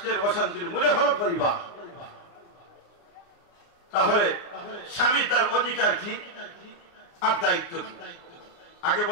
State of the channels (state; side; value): late; right; 29 ms